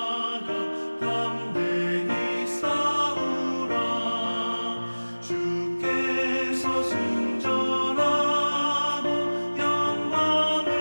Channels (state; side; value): inverted; both; correlation -1.00